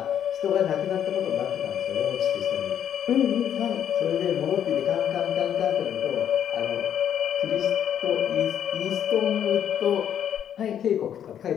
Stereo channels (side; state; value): right; quieter; 9.5 dB